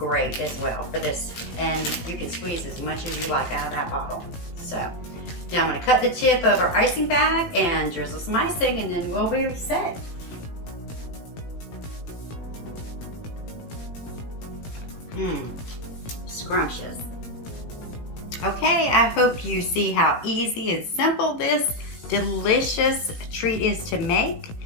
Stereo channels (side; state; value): right; late; 18 ms